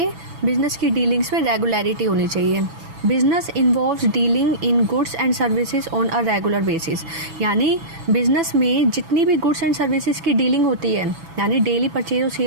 बिजनेस की डीलिंग्स में रेगुलरिटी होनी चाहिए। Business involves dealing in goods and services on a regular basis. यानी बिजनेस में जितनी भी गुड्स एंड सर्विसेज की डीलिंग होती है, यानी डेली परचेज और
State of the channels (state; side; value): late; left; 6.1 ms